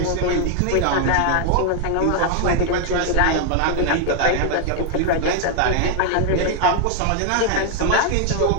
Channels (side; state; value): both; different; correlation 0.00